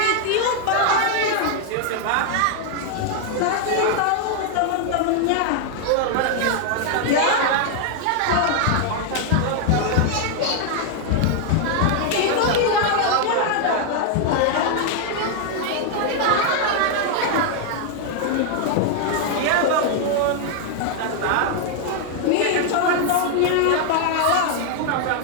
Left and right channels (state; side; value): different; both; correlation 0.00